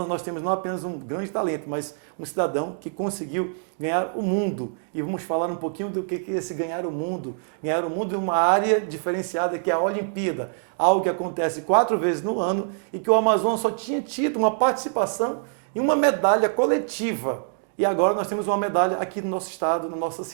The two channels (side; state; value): left; silent; digital silence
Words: nós temos não apenas um grande talento, mas um cidadão que conseguiu ganhar o mundo. E vamos falar um pouquinho do que é esse ganhar o mundo. Ganhar o mundo em uma área diferenciada que é a Olimpíada, algo que acontece 4 vezes no ano e que o Amazonas só tinha tido uma participação em uma medalha coletiva. E agora nós temos uma medalha aqui no nosso estado, na nossa